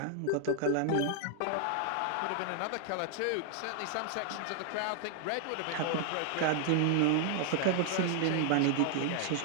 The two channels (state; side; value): different; both; correlation 0.00